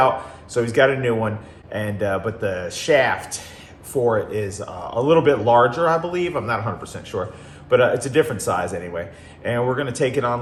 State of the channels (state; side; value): identical; both; correlation 1.00